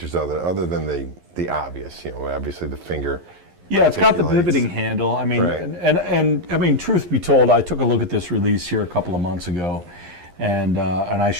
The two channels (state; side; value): late; left; 11 ms